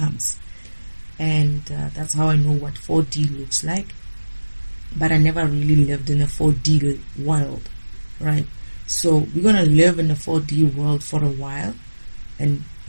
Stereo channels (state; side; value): inverted; both; correlation -1.00